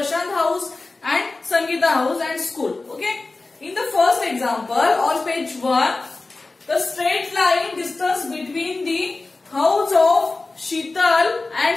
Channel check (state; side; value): quieter; right; 3.4 dB